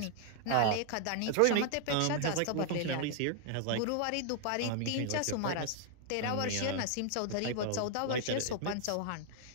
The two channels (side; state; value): both; different; correlation 0.00